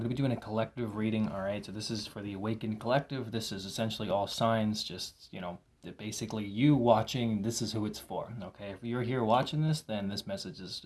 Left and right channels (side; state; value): both; identical; correlation 1.00